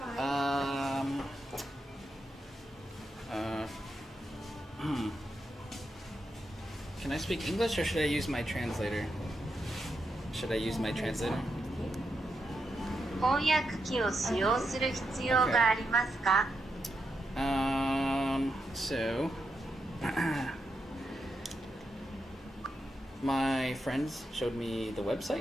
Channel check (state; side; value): normal; both; correlation 0.85